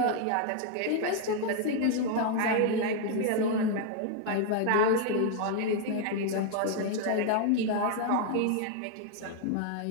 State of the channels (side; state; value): both; different; correlation 0.00